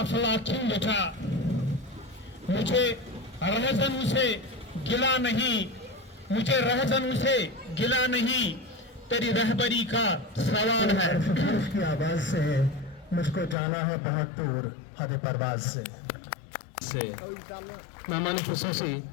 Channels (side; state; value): right; drops out; at 13.6 s